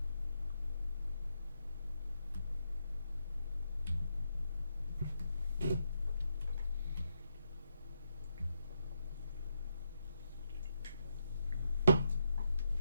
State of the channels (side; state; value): both; inverted; correlation -0.81